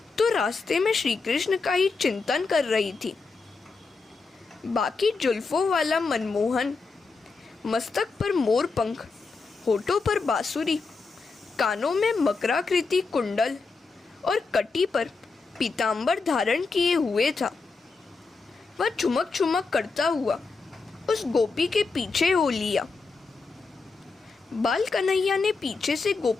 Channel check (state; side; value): quieter; right; 4.3 dB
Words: तो रास्ते में श्री कृष्ण का ही चिंतन कर रही थी। बाकी जुल्फों वाला मनमोहन, मस्तक पर मोर पंख, होठों पर बांसुरी, कानों में मकराकृति कुंडल और कटी पर पीतांबर धारण किए हुए था। वह चुमक चुमक करता हुआ उस गोपी के पीछे हो लिया। बाल कन्हैया ने पीछे से